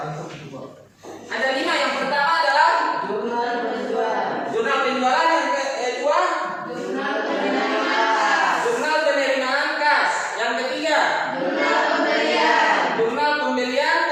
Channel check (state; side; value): identical; both; correlation 1.00